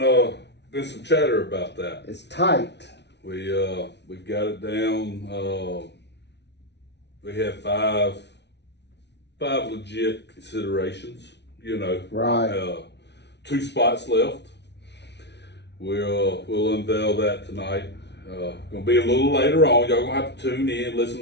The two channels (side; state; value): right; late; 0.50 ms